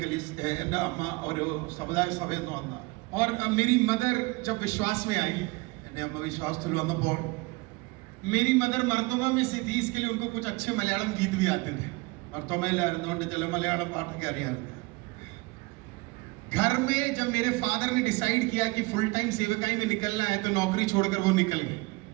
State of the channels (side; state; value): left; quieter; 24.5 dB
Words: कलीस है എൻ്റെ അമ്മ ഒരു സമുദായ സഭയിൽ നിന്ന് വന്ന और मेरी मदर जब विश्वास में आई എൻ്റെ അമ്മ വിശ്വാസത്തിൽ വന്നപ്പോൾ मेरी मदर मर्दोमा में से थी इसके लिए उनको कुछ अच्छे मलयालम गीत भी आते थे മർത്തോമയിലായിരുന്നുകൊണ്ട് ചില മലയാളം പാട്ടൊക്കെ അറിയാമായിരുന്നു घर में जब मेरे फादर ने डिसाइड किया कि फुल टाइम सेवकाई में निकलना है तो नौकरी छोड़कर वो निकल गए